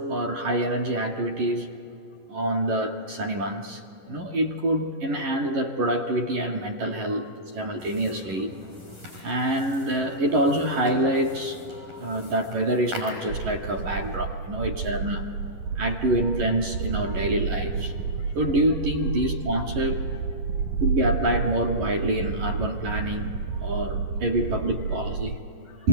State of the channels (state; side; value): late; left; 11 ms